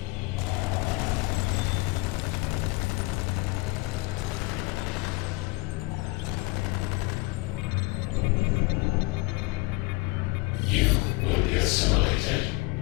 You will be assimilated.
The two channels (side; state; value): right; quieter; 23.6 dB